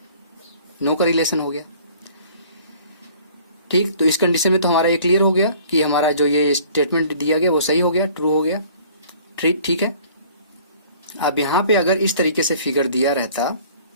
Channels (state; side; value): inverted; both; correlation -0.52